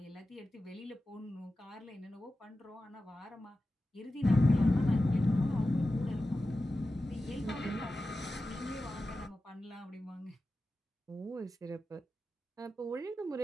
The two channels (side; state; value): both; normal; correlation 0.93